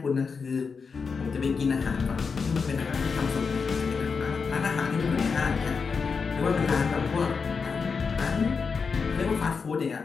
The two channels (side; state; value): right; quieter; 5.3 dB